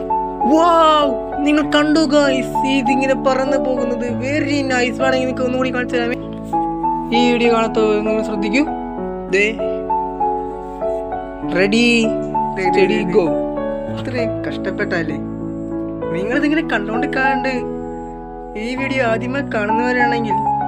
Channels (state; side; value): identical; both; correlation 1.00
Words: വാവ്, നിങ്ങൾ കണ്ടു ഗൈസ്, ഇതിങ്ങനെ പറന്ന് പോകുന്നത് വെരി നൈസ്. വേണമെങ്കിൽ നിങ്ങൾക്ക് ഒന്നുകൂടി കാണിച്ചു തരാമേ? ഈ വീഡിയോ കാണാത്ത നിങ്ങൾ ശ്രദ്ധിക്കൂ. Ready, steady, go. അത്രയും കഷ്ടപ്പെട്ടല്ലേ? നിങ്ങളിതിങ്ങനെ കണ്ടോണ്ടിരിക്കാണ്ട് ഈ വീഡിയോ ആദ്യമായി കാണുന്നവരാണെങ്കിൽ